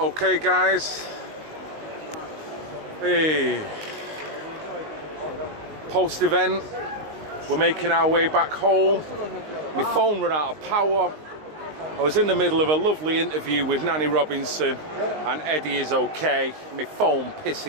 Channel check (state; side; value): late; left; 19 ms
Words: guys, hey, post-event, we're making our way back home. My phone ran out of power. I was in the middle of a lovely interview with Nanny Robinson, and Eddie is okay. My phone